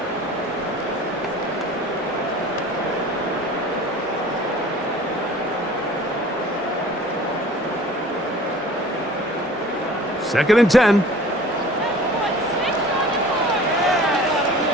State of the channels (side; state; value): both; normal; correlation 0.45